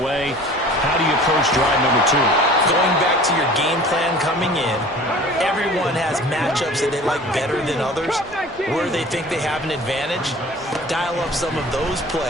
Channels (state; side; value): normal; both; correlation 0.45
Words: How do you approach drive number 2? Going back to your game plan coming in, everyone has matchups that they like better than others. Where they think they have an advantage, dial up some of those